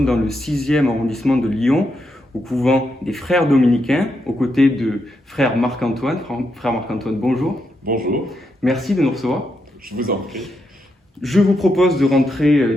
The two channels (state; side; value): normal; both; correlation 0.82